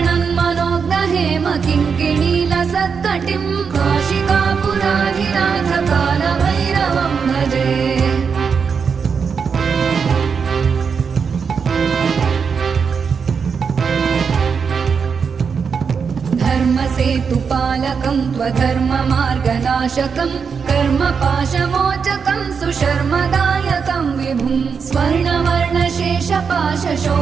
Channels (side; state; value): left; quieter; 6.0 dB